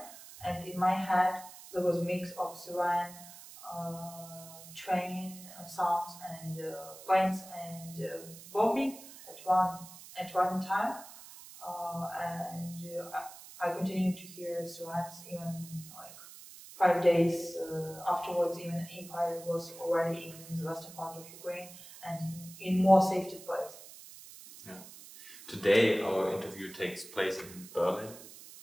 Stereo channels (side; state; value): right; noise; hiss, 16 dB below the sound